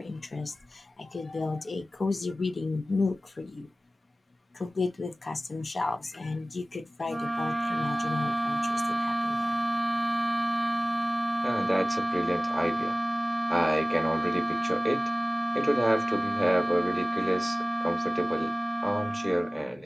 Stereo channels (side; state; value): both; normal; correlation 0.97